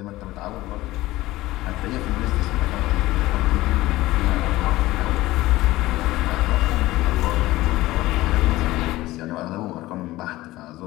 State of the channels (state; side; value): quieter; right; 17.6 dB